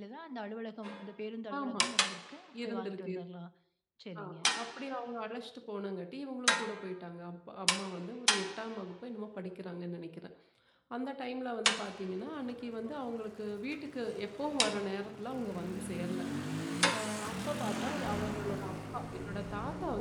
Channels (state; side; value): identical; both; correlation 1.00